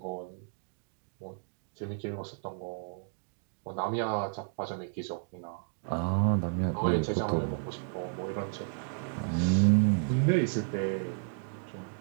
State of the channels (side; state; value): left; silent; digital silence